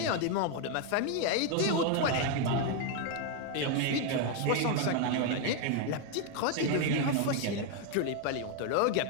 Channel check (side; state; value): both; different; correlation 0.01